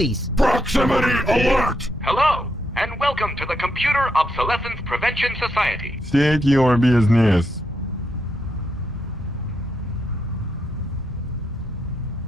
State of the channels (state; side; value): normal; both; correlation 0.80